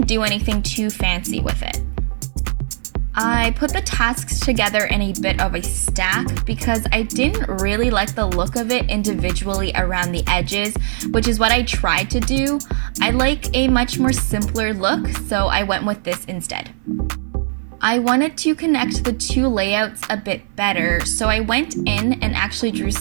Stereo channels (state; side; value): silent; left; 57 dB below the other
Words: do anything too fancy with it. I put the tasks together in a bit of a stack because I didn't really like the look of it individually around the edges, which is what I tried to do. I like a much more simpler look, so I went with this instead. I wanted to connect the two layouts a bit better, so I went in and actually drew